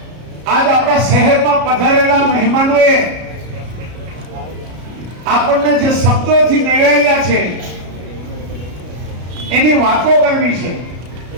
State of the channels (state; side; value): late; left; 33 ms